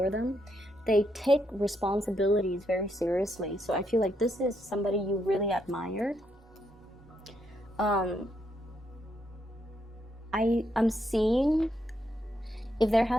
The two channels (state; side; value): normal; both; correlation 0.78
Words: them. They take responsibilities very seriously. So I feel like this is somebody you really admire. I'm seeing if there